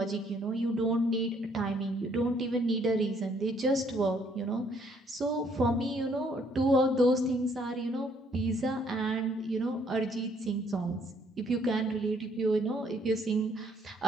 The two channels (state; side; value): normal; both; correlation 0.66